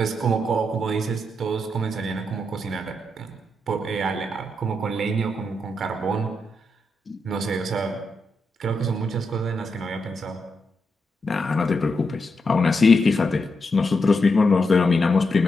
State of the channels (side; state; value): both; normal; correlation 0.84